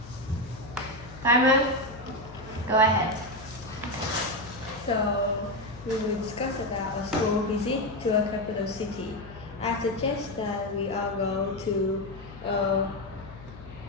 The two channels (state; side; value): noise; left; hum, 17 dB below the sound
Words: Timer, go ahead. So, we will discuss about a school visit to a capital city. I suggest that we all go to